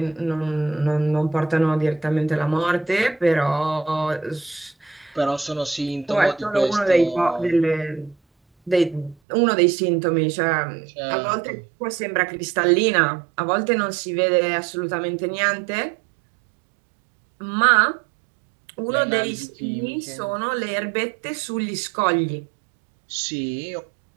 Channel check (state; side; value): drops out; left; at 9.2 s